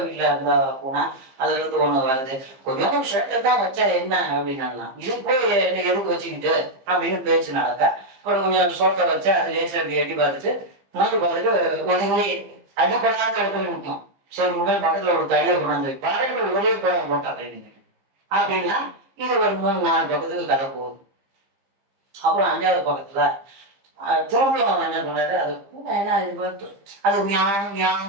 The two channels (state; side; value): late; left; 15 ms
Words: வீட்டில் இருந்தா பூனா அதுல இருந்து ஒண்ணு வருது, கொஞ்சம் ஷர்ட்டை தான் வச்சா என்ன அப்படின்னா, இது போய் எதுக்கு வச்சுக்கிட்டு அப்படின்னு பேச்சு நடக்க. அப்புறம் கொஞ்சம் சோட்டை வச்சா அது லேசா அப்படி எட்டி பார்த்துட்டு பார்த்துட்டு ஒதுங்கி அடிப்படாத இடத்துல நிற்கும். சரி உடனே பக்கத்துல ஒரு தடியை கொண்டாந்து பாருங்கள் ஒரே போட்டா அப்படின்னா இது ஒரு 3-4 பக்கத்துக்கு கதை போகுது. அப்புறம் 5வது பக்கத்துல திரும்பியும் என்ன பண்ணாரு, அது என்ன அது